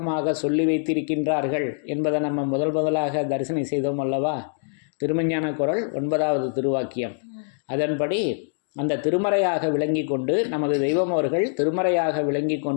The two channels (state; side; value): silent; right; digital silence